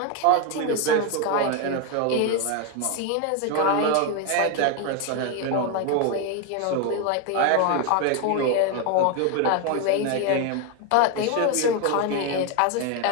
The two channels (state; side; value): different; both; correlation 0.01